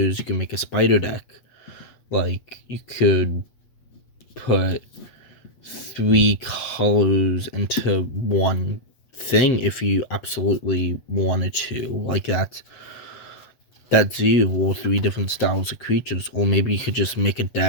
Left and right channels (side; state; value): right; late; 8.1 ms